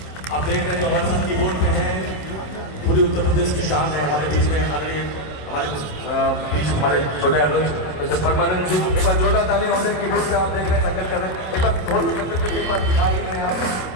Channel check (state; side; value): late; right; 27 ms